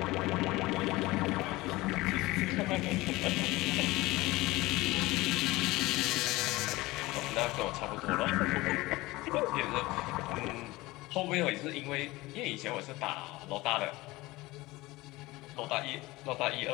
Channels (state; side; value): quieter; right; 20.2 dB